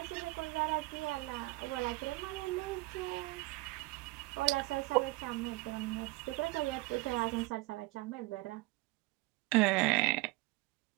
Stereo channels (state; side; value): quieter; left; 21.7 dB